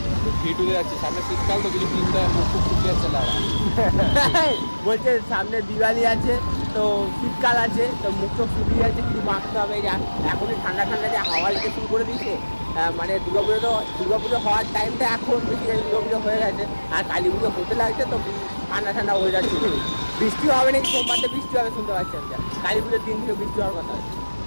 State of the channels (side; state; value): both; inverted; correlation -1.00